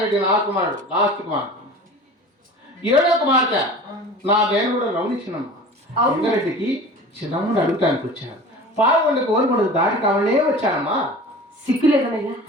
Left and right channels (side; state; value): both; normal; correlation 0.39